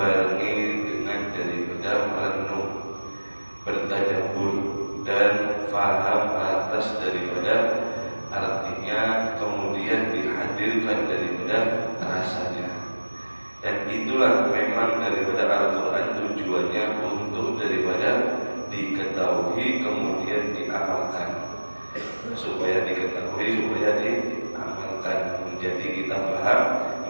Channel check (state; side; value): inverted; both; correlation -1.00